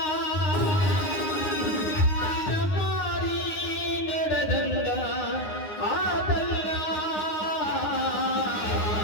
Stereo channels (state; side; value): late; right; 9.7 ms